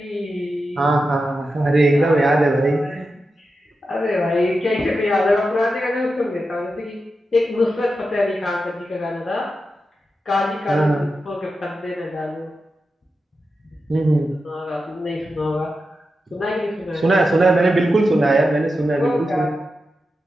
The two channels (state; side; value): normal; both; correlation 0.90